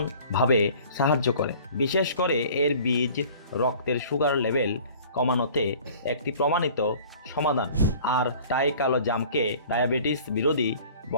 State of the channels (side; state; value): both; inverted; correlation -0.48